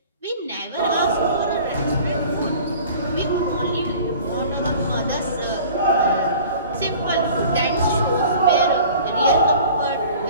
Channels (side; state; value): both; inverted; correlation -0.45